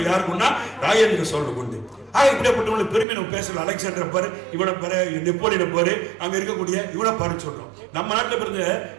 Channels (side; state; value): left; drops out; at 3.1 s